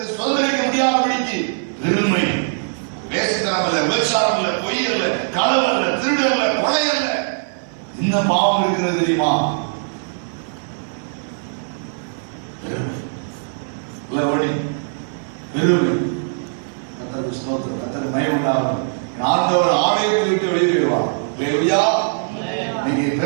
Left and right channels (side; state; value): left; silent; 55 dB below the other